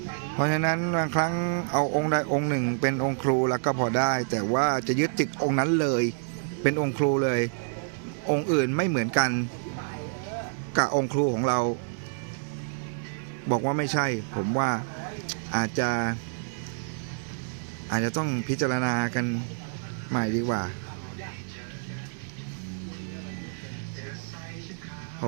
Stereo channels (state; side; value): silent; left; digital silence